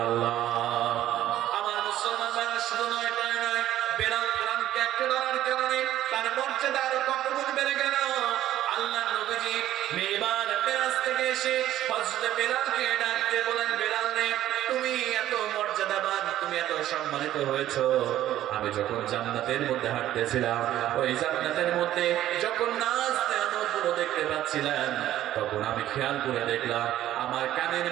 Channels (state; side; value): quieter; left; 13.0 dB